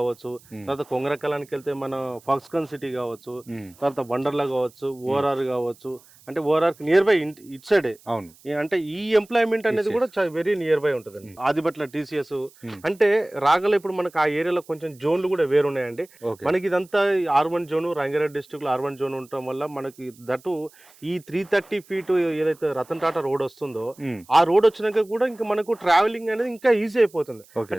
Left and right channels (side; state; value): right; noise; hiss, 27 dB below the sound